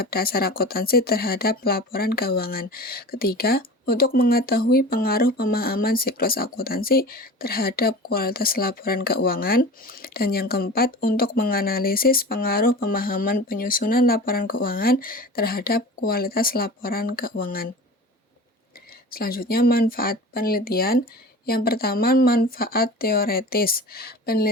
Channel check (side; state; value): both; normal; correlation 0.36